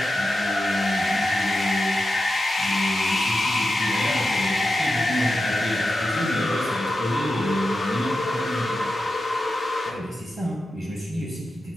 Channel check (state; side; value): normal; both; correlation 0.90